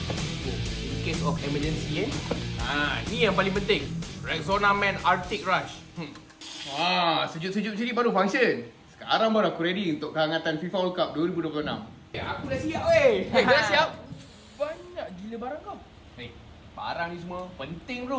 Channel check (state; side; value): identical; both; correlation 1.00